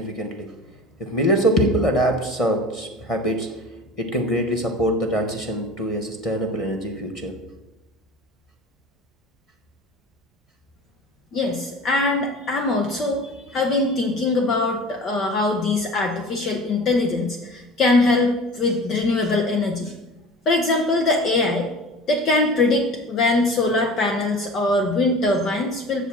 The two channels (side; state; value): both; normal; correlation 0.38